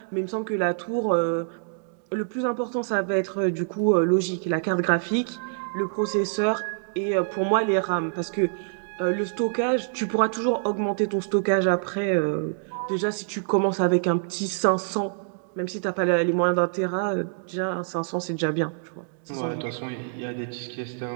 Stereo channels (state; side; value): silent; left; digital silence